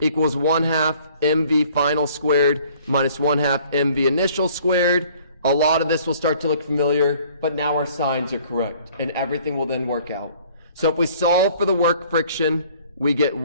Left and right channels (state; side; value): inverted; both; correlation -0.55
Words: equals 1/2 mv final squared minus 1/2 mv initial squared. A lot of this will start to look familiar, but now our signs are correct, and everything will then work out. So if we solve for the work friction, we get